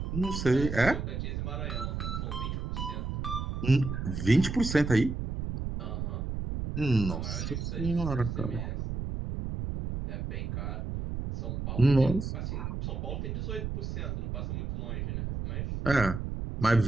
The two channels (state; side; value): noise; right; rumble, 3 dB below the sound